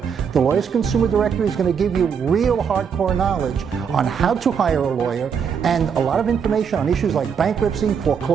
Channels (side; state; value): left; quieter; 6.9 dB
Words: The Lawyers Consumer Directory is going to give you real hardcore knowledge on how to hire a lawyer and a lot of information on issues like bankruptcy,